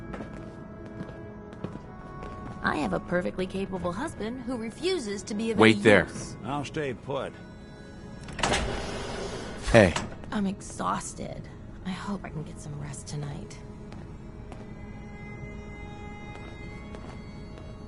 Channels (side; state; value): both; identical; correlation 1.00